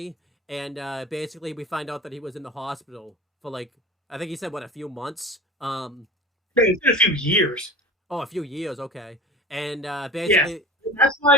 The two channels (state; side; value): normal; both; correlation 0.34